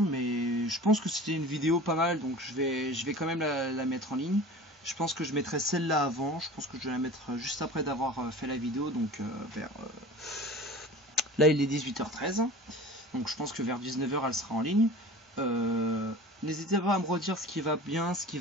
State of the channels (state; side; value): normal; both; correlation 0.38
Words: je pense que c'était une vidéo pas mal, donc je vais quand même la mettre en ligne. Je pense que je mettrai celle-là avant, je pense que je vais la mettre juste après d'avoir fait la vidéo, donc vers... Là il est 18h13, donc je pense que vers 19h elle sera en ligne. N'hésitez pas à me redire ce qui va bien, ce qui